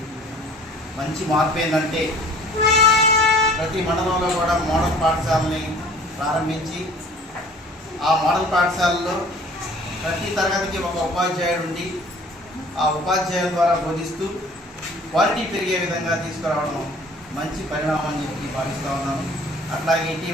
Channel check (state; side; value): normal; both; correlation 0.50